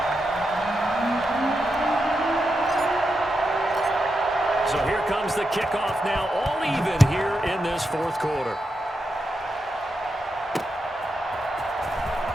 So here comes the kickoff now, all even here in this 4th quarter.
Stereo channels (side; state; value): both; normal; correlation 0.86